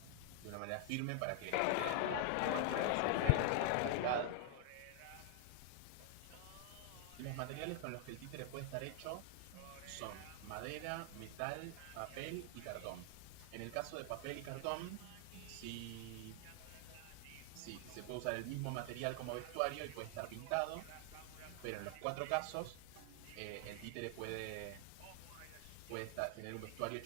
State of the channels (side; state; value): both; different; correlation 0.00